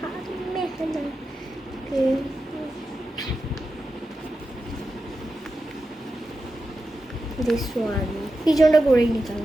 মেহেনা this one পিছনটা করেই নিতাম।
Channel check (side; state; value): both; normal; correlation 0.90